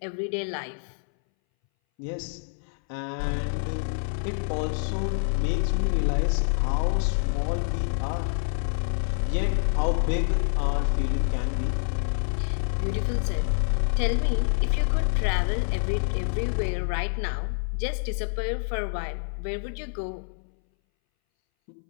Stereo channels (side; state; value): right; silent; 60 dB below the other